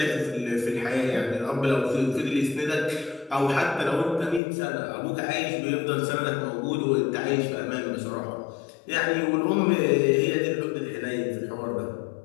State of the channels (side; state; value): right; drops out; at 4.4 s